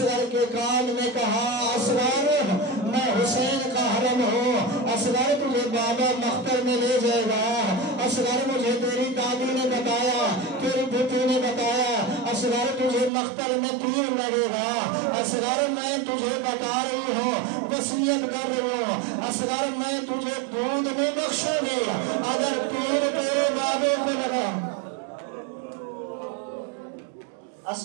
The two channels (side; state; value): left; drops out; at 13.1 s